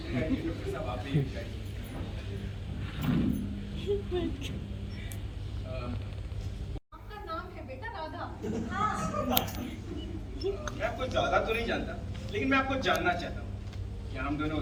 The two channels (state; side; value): identical; both; correlation 1.00